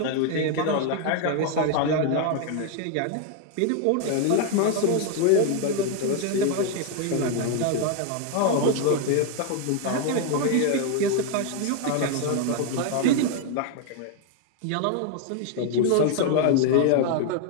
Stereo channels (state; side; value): different; both; correlation 0.01